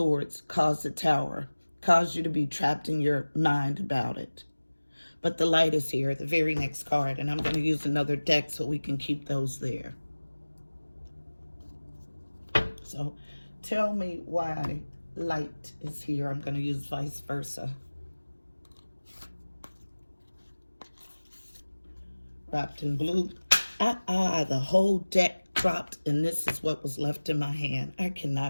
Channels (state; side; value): inverted; both; correlation -1.00